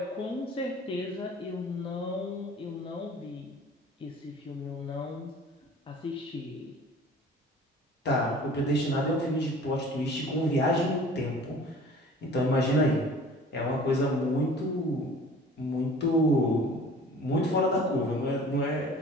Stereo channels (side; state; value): both; normal; correlation 0.47